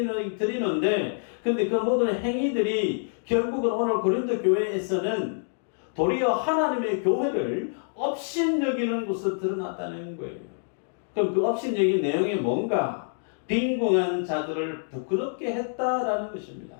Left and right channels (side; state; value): right; silent; digital silence